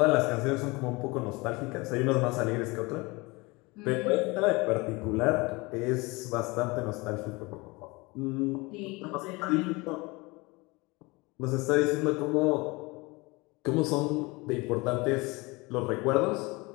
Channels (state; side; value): quieter; right; 24.7 dB